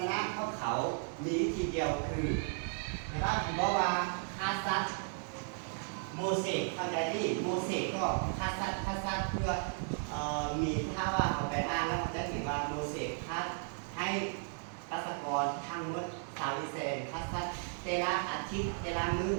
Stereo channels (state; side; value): silent; left; 54 dB below the other